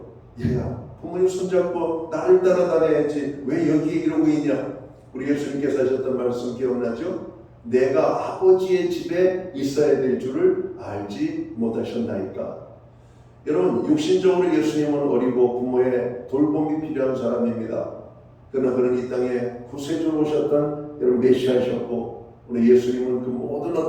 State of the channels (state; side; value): identical; both; correlation 1.00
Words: 얘야, 부모님 손잡고 나를 따라다녀야지 왜 여기에 이러고 있냐? 우리 예수님께서 하셨던 말씀 기억나죠? 내가 아버지의 집에 있어야 될 줄을 알지 못하셨나이까. 여러분, 육신적으로 예수님은 어리고 부모의 돌봄이 필요한 사람입니다. 그러나 그는 이 땅에 구세주로 오셨던 여러분 메시아셨고, 오늘 예수님은 그 모든